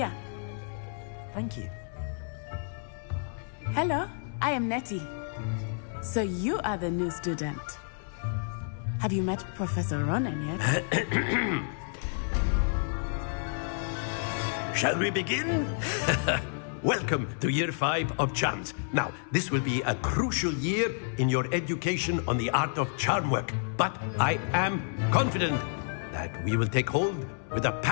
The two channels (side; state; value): right; silent; 58 dB below the other